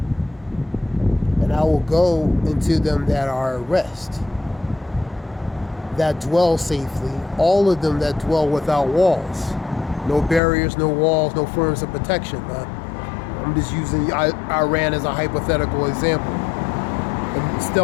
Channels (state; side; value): drops out; right; at 10.4 s